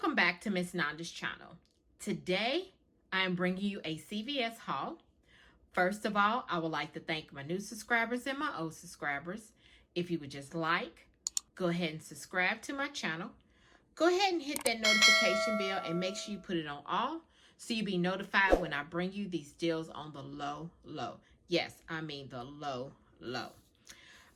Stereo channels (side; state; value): both; identical; correlation 1.00